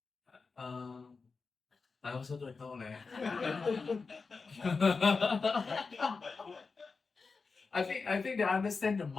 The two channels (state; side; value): quieter; right; 4.5 dB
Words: I also don't know. I think they understand the